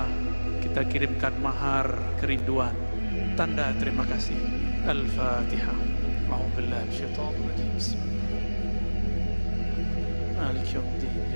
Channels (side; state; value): both; inverted; correlation -1.00